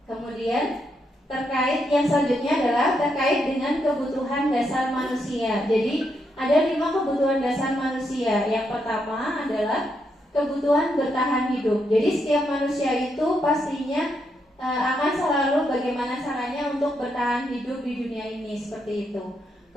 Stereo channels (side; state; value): both; normal; correlation 0.80